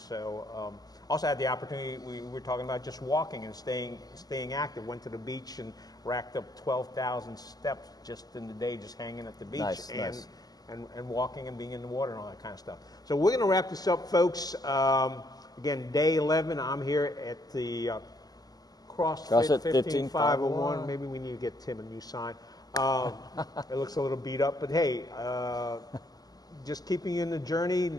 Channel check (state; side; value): late; right; 0.18 ms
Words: also had the opportunity, we were talking about just walking and staying active. Went to the beach and racked up 12,000 steps just in the day, just hanging at the beach and walking and being in the water and all that kind of stuff. So we're going to wrap this up, folks. Again, day 11. I'm here at the CrossFit 15501. Maybe we need to get Tim a new sign. It looks a little beat up, but hey, just keeping you in the journey